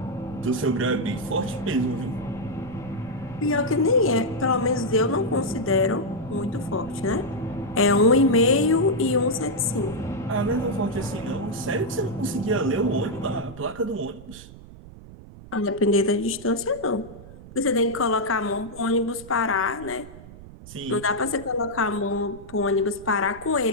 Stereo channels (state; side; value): noise; right; rumble, 17 dB below the sound